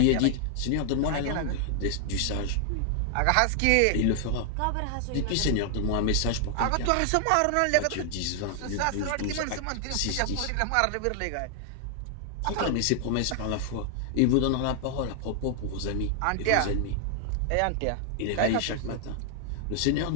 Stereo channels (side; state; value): both; different; correlation 0.00